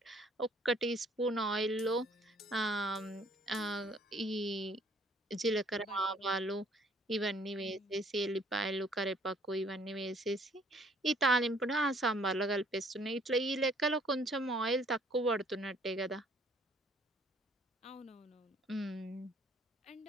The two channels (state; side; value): normal; both; correlation 0.60